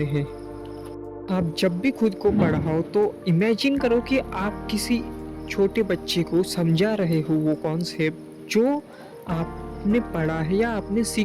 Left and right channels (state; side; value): identical; both; correlation 1.00